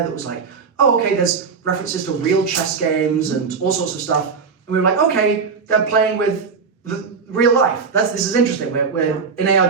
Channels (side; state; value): left; quieter; 5.4 dB